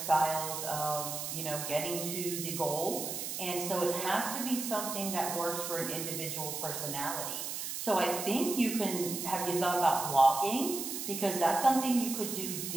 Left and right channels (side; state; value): right; noise; hiss, 5 dB below the sound